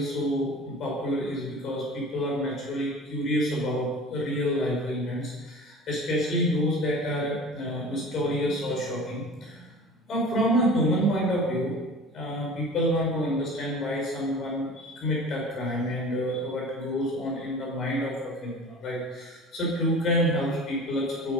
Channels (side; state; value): both; normal; correlation 0.40